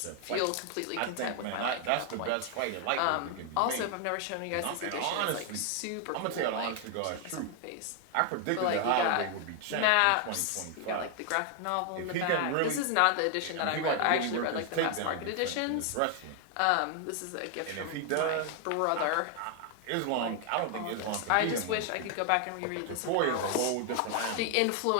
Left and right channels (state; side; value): different; both; correlation 0.00